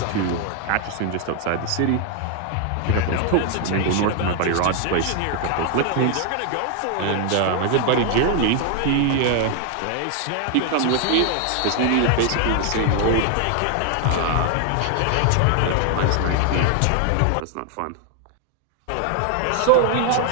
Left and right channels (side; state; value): both; different; correlation 0.00